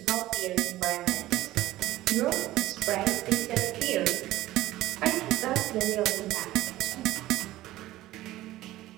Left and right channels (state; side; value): quieter; left; 16.1 dB